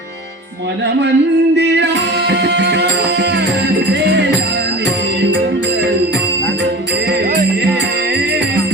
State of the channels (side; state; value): both; normal; correlation 0.36